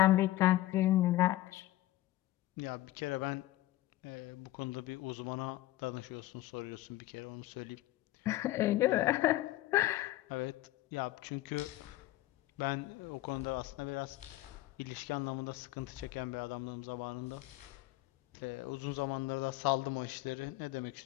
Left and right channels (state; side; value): quieter; right; 16.2 dB